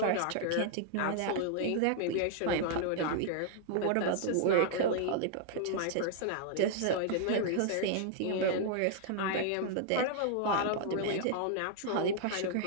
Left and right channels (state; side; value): different; both; correlation -0.01